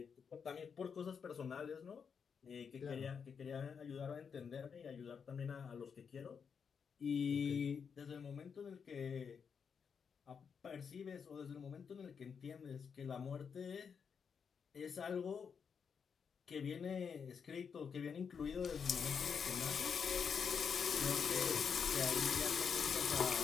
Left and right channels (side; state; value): right; quieter; 6.5 dB